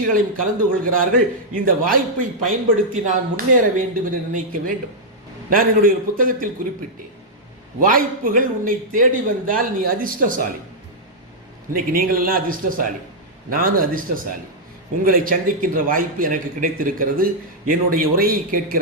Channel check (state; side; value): normal; both; correlation -0.06